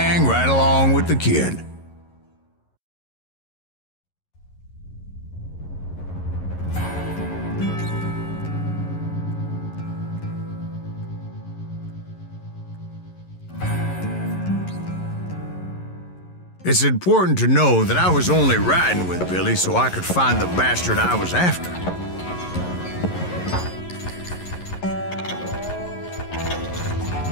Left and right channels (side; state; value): right; late; 11 ms